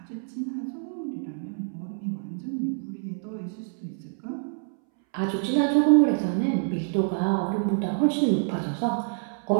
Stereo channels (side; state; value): left; silent; 60 dB below the other